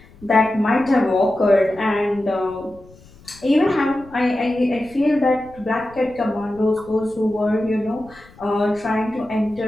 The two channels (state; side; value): noise; left; rumble, 24 dB below the sound